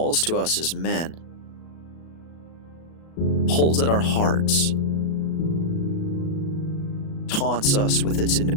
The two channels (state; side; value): late; right; 37 ms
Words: to us as men? Pulls at our hearts, taunts us with its